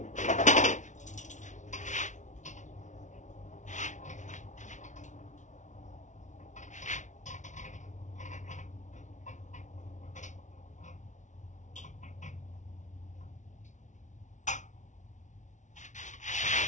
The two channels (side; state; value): right; late; 0.36 ms